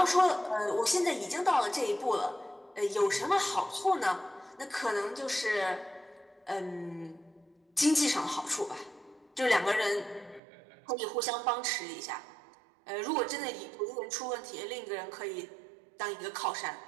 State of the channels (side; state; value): left; drops out; at 10.4 s